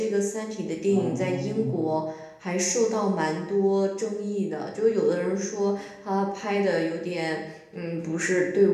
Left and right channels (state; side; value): identical; both; correlation 1.00